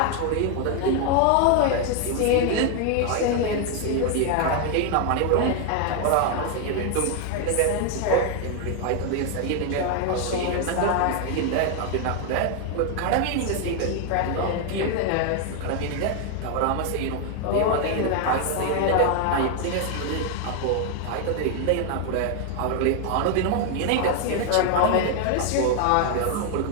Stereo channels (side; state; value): both; different; correlation 0.01